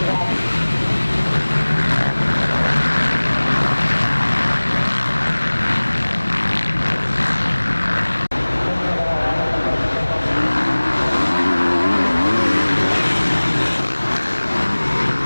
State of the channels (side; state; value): both; inverted; correlation -1.00